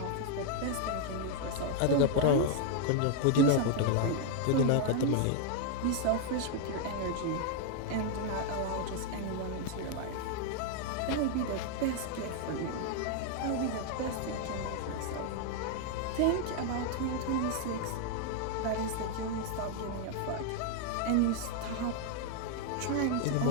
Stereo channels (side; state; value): both; different; correlation 0.00